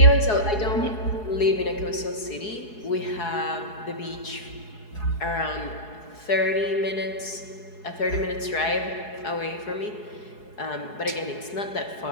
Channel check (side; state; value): right; late; 4.7 ms